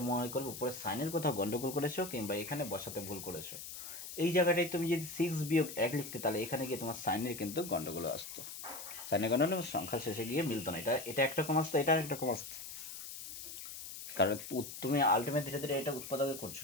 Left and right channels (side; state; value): left; noise; hiss, 10 dB below the sound